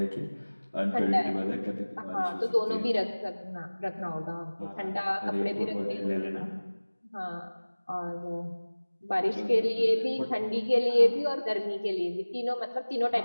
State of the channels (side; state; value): both; inverted; correlation -1.00